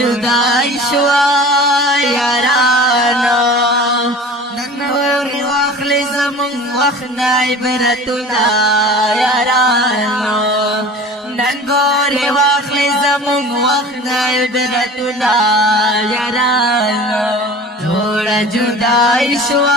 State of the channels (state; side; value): normal; both; correlation 0.40